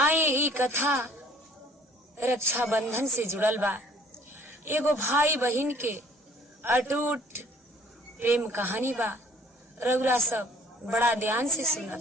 ई कथा रक्षा बंधन से जुड़ल बा। एगो भाई बहन के अटूट प्रेम कहानी बा। रउरा सब बड़ा ध्यान से सुनब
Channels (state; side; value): normal; both; correlation 0.56